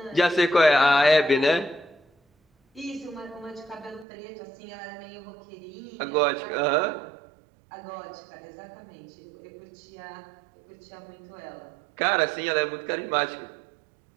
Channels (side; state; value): left; drops out; at 4.0 s